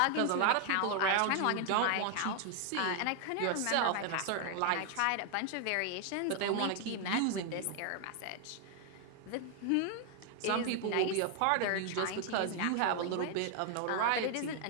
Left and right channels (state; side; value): different; both; correlation 0.00